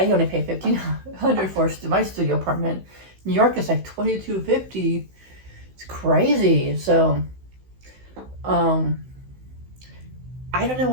only pay $1,500 for my studio apartment. New York is like $22.50. It's crazy. So, I don't know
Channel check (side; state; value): left; late; 16 ms